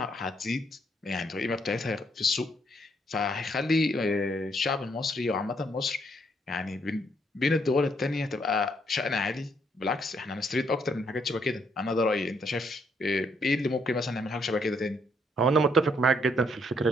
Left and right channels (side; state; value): both; normal; correlation 0.72